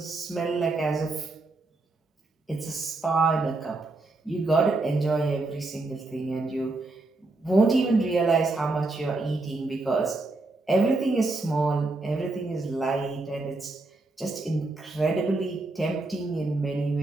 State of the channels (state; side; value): quieter; left; 3.2 dB